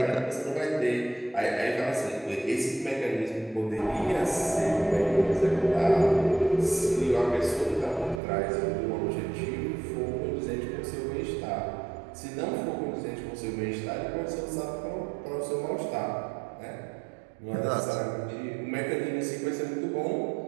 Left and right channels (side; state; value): left; drops out; at 8.2 s